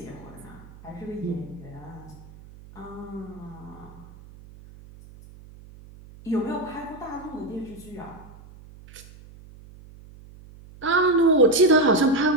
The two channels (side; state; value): right; noise; hum, 20 dB below the sound